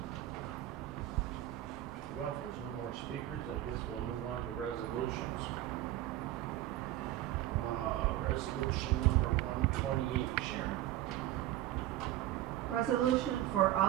Well, if there's no more speakers, I guess we'll move on to resolutions. Resolution number 128, Sharon. Resolution for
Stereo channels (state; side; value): quieter; left; 14.2 dB